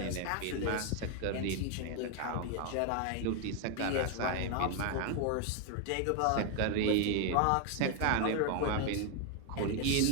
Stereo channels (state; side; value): different; both; correlation 0.01